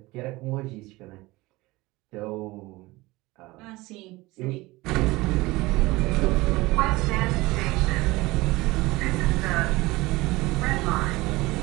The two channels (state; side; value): quieter; left; 20.9 dB